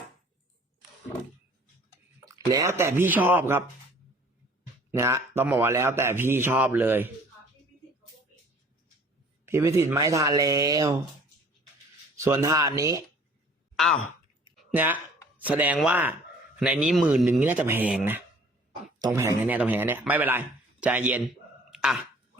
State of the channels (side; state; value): both; normal; correlation 0.52